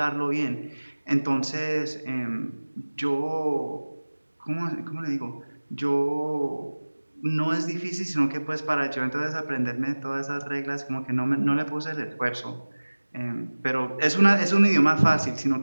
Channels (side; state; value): both; inverted; correlation -1.00